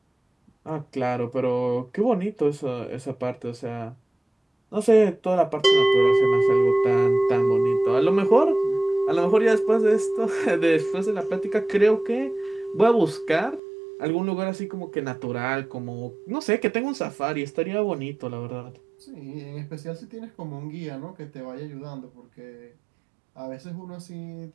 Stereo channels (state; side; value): drops out; left; at 13.6 s